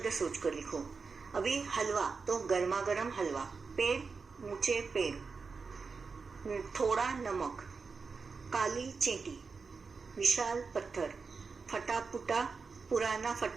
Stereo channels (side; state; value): left; quieter; 4.8 dB